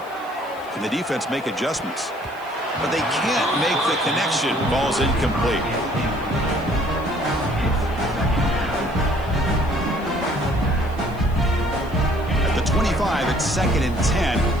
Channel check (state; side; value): noise; right; hiss, 26 dB below the sound